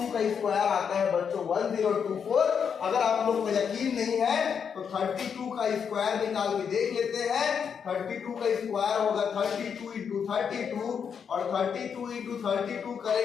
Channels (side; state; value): right; quieter; 7.0 dB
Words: का स्क्वायर आता है बच्चों 1024। अगर आप लोग को यकीन नहीं है तो 32 का स्क्वायर निकाल के देख लेते हैं। 32 का स्क्वायर होगा 32 इंटू 32, और 32 इंटू 32